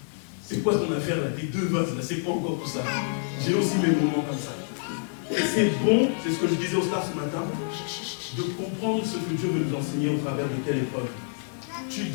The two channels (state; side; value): silent; right; digital silence